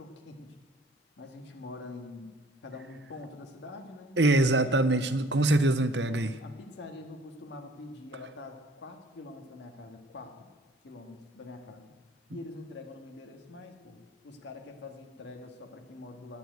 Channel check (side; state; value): both; normal; correlation 0.55